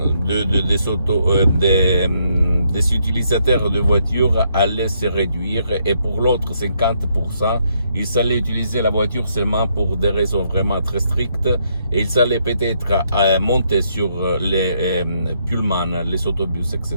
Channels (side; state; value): both; inverted; correlation -0.74